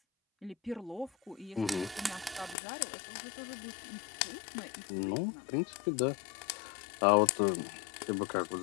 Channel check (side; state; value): right; drops out; at 2.6 s